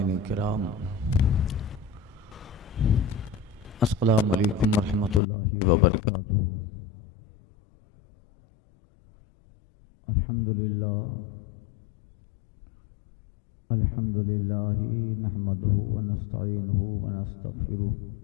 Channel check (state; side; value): drops out; right; at 5.2 s